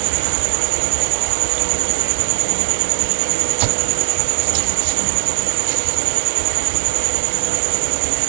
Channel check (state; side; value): silent; left; digital silence